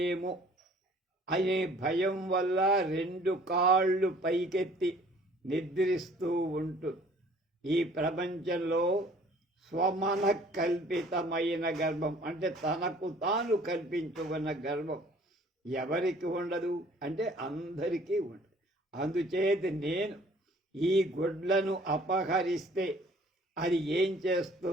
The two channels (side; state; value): both; normal; correlation 0.54